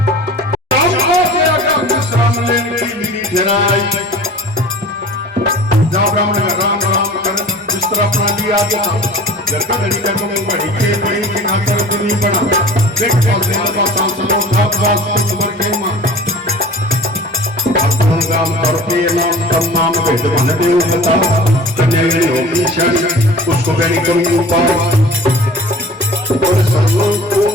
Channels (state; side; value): normal; both; correlation 0.42